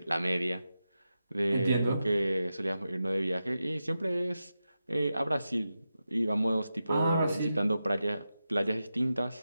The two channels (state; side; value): inverted; both; correlation -0.90